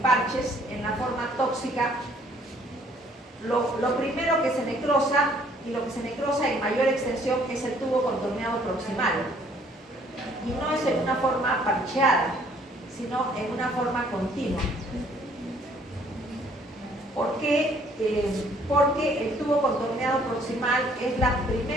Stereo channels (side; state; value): both; normal; correlation 0.61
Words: En la forma tóxica, lo primero que se necrosa y lo que se necrosa en mayor extensión es el tubo contorneado proximal. Y no es en una forma parcheada, sino en una forma continua. ¿Por qué? Porque el tubo contorneado proximal es la